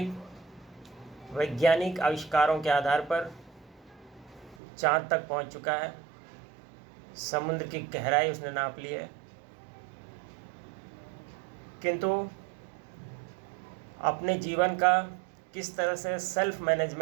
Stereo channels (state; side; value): drops out; left; at 4.5 s